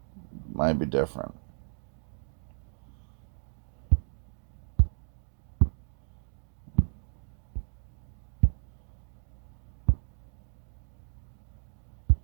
might be different.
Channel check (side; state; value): left; silent; digital silence